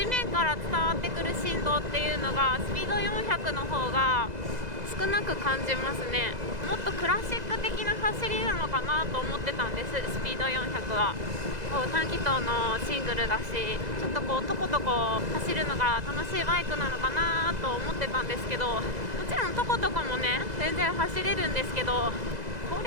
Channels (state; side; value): late; left; 2.0 ms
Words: 面から伝わってくる振動っていうのがスピード400の方が少少なく感じますね。もっとクラシック的な走りなのかなと思ってたんです。スピード400はこう短気筒のシングルだし、ちょっとこうとことこ走るのが楽しいバイクなのかなと思ってたんですけど、もちろんとことこもね全然走れるんですけど、こ